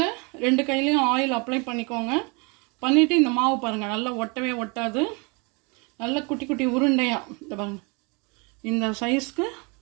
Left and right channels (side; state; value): left; quieter; 30.8 dB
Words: ரெண்டு கையிலையும் ஆயில் அப்ளை பண்ணிக்கோங்க. பண்ணிவிட்டு இந்த மாவு பாருங்கள், நல்லா ஒட்டவே ஒட்டாது. நல்லா குட்டி குட்டி உருண்டையாக இந்த பாருங்கள், இந்த சைஸ்க்கு